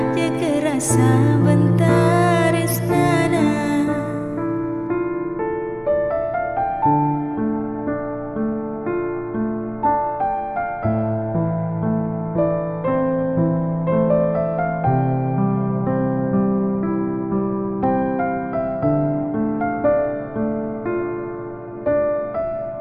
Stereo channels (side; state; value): both; identical; correlation 1.00